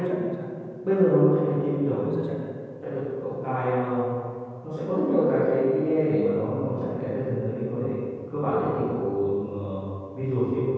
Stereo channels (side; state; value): both; identical; correlation 1.00